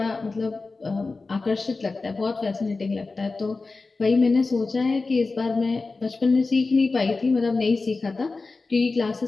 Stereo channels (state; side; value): quieter; right; 3.8 dB